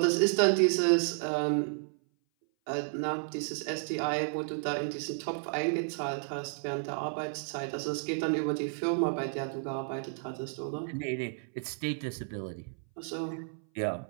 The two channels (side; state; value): left; silent; 56 dB below the other